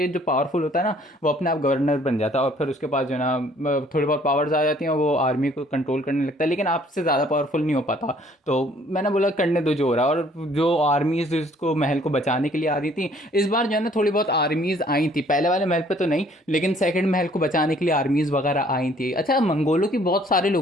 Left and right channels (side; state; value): both; normal; correlation 0.59